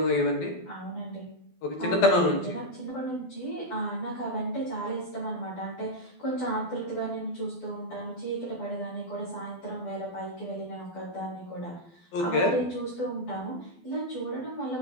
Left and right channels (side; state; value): right; late; 12 ms